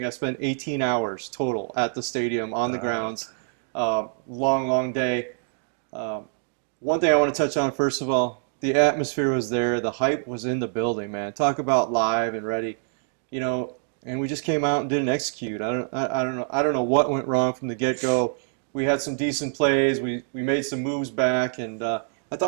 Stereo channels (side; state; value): left; silent; 61 dB below the other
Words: I spent 18 hours total at the stadium on the grounds. Long day. One thing I want to touch on, first of all, the atmosphere was there. The hype was in the building, man. Talk about live and ready. And we just came out and didn't execute. I don't know what went wrong from the get-go. We had some decent plays. We made some moves back, and I